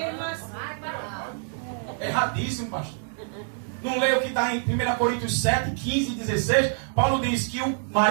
Erradíssimo, pastor. Não leia o que está em 1 Coríntios 7, 15 e 16. Paulo diz que o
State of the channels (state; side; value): silent; left; 61 dB below the other